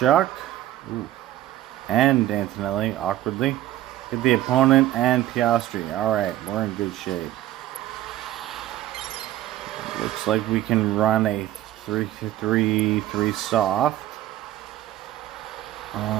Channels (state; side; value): quieter; left; 13.9 dB